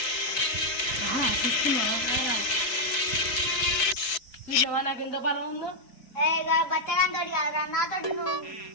నాకు ఎంత బలం ఉందో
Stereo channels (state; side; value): late; right; 4.8 ms